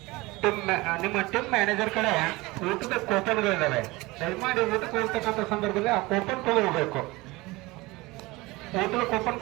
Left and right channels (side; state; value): left; quieter; 21.6 dB